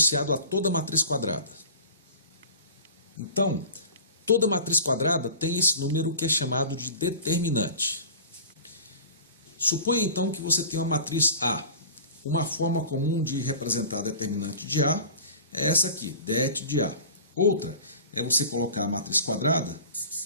a toda matriz quadrada. Então, toda matriz quadrada tem esse número que é chamado de determinante. Suponha então que você tem uma matriz A. Uma forma comum de representar determinante de A é essa aqui, det de A. Outra é você colocar a matriz quadrada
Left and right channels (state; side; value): inverted; both; correlation -0.39